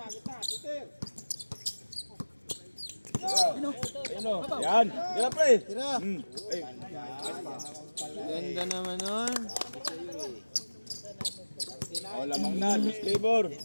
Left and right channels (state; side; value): inverted; both; correlation -1.00